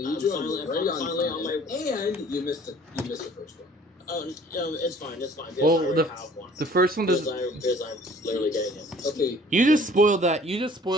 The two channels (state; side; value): normal; both; correlation 0.53